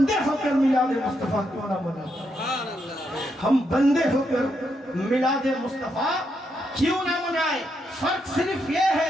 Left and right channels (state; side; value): normal; both; correlation 0.80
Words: ہو کر میلاد مصطفیٰ کیوں نہ منائیں؟ ہم بندے ہو کر میلاد مصطفیٰ کیوں نہ منائیں؟ فرق صرف یہ